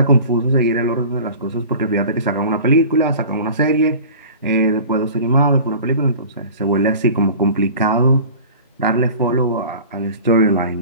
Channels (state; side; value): inverted; both; correlation -0.40